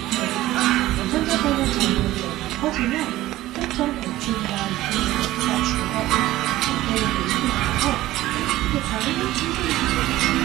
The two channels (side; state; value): left; quieter; 15.9 dB